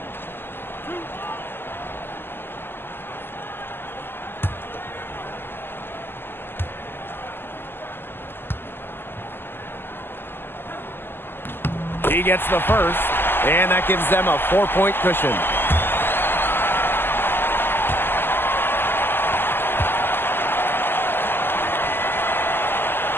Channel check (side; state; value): right; late; 0.10 ms